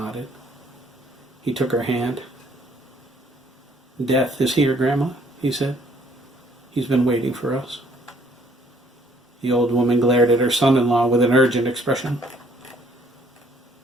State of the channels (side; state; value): both; normal; correlation 0.63